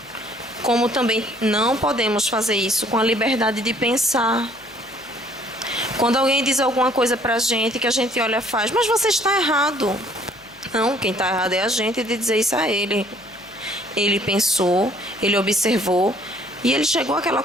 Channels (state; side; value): noise; left; hum, 29 dB below the sound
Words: Como também não podemos fazer isso com a liberdade de pensar. Quando alguém diz alguma coisa pra gente, que a gente olha e faz, mas você está errado. Não, quem está errado é a gente de dizer isso a ele. Ele pensou, ele observou e ele chegou àquela